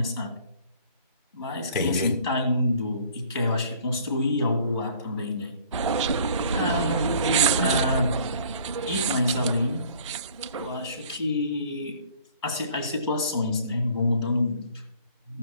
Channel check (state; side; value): inverted; both; correlation -0.53